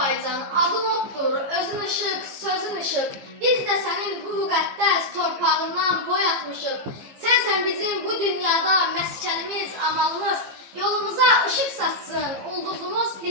adın oddur, özün ışıq, sözün ışıq. Biz də sənin bu müqəddəs torpağından boy atmışıq. Sənsən bizim bu dünyada məskənimiz, amalımız. Yolumuza ışıq saçsın, ulduzumuz,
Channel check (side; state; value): left; late; 15 ms